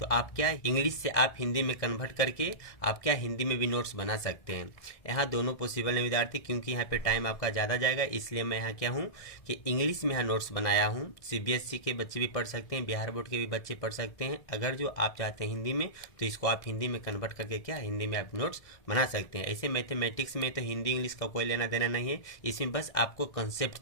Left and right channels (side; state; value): right; late; 1.6 ms